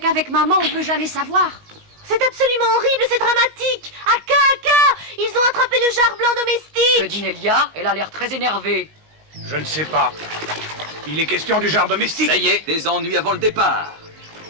maman on peut jamais savoir. C'est absolument horrible, c'est dramatique! Aka! Ils ont attrapé le jar blanc domestique! Que dit Nelia? Elle a l'air très énervée. Je ne sais pas. Il est question du jar domestique. Ça y est, des ennuis avant le départ.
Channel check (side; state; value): left; late; 19 ms